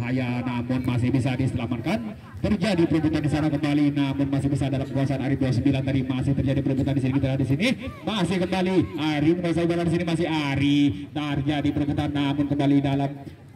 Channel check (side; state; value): both; identical; correlation 1.00